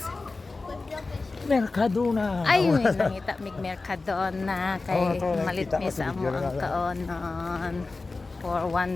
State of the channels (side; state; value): right; quieter; 3.7 dB